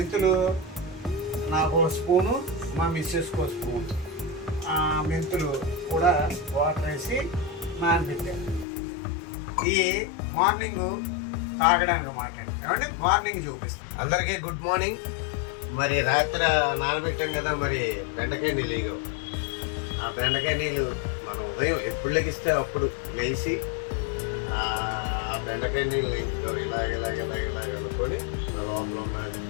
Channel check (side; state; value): right; drops out; at 8.7 s